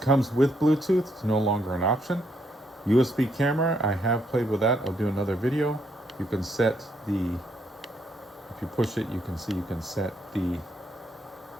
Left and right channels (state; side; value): normal; both; correlation 0.74